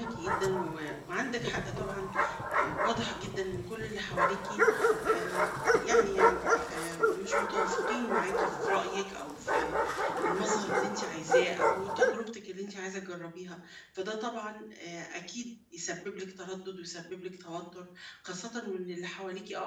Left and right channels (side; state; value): both; identical; correlation 1.00